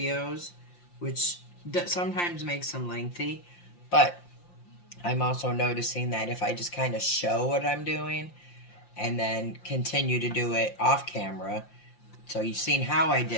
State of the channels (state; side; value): late; right; 5.7 ms